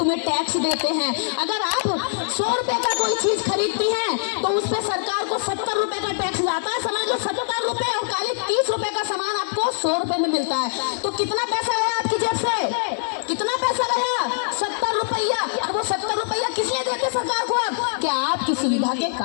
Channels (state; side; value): silent; right; 63 dB below the other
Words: टैक्स देते हैं। अगर आप 100 रुपए का कोई चीज खरीदती हैं, तो उस पर सरकार को 70 रुपए का टैक्स जाता है। समझ लो 70 रुपए और काले 30 रुपए का सामान आपको 100 रुपए में मिलता है। तो कितना पैसा गया आपकी जेब से, कितना पैसा गया, 70 रुपया। और वो 70 रुपया किस लिए देते सरकार को आप, कि आपकी सुविधा के